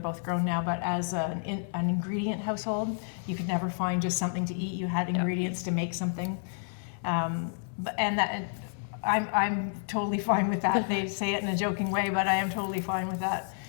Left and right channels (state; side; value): silent; right; 57 dB below the other